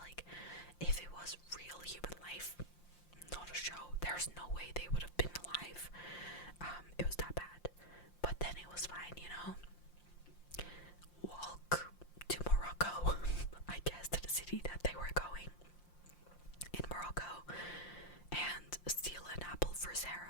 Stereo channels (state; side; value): late; right; 5.7 ms